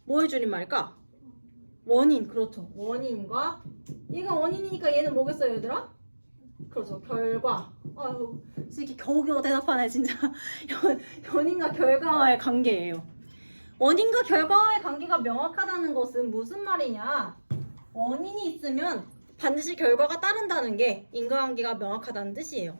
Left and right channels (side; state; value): both; inverted; correlation -1.00